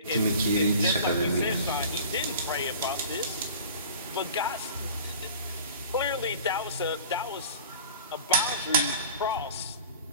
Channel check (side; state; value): both; inverted; correlation -0.41